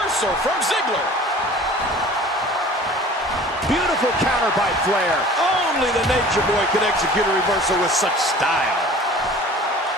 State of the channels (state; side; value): normal; both; correlation 0.45